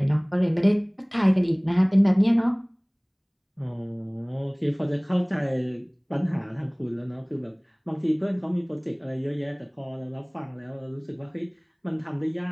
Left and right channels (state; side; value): identical; both; correlation 1.00